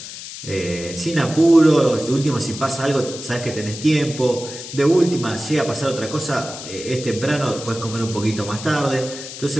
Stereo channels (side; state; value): left; noise; hiss, 11 dB below the sound